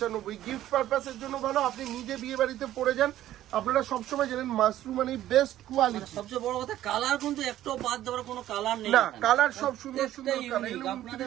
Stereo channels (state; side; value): quieter; left; 13.2 dB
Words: গিফট পারপাসের জন্য ভালো, আপনি নিজে বিয়ে বাড়িতে পরে যান। আপনারা সবসময় জানেন মাশরু মানে বেস্ট কোয়ালিটি। সবচেয়ে বড় কথা, কালার কিন্তু একটু বাদ দেওয়ার কোনো কালার নেই না, কালার সব সুন্দর সুন্দর কালার,